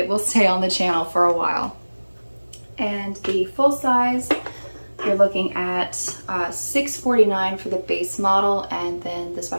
will stay on the channel for a while. And the full size, you're looking at $649 for the base model, and then the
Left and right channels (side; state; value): both; inverted; correlation -1.00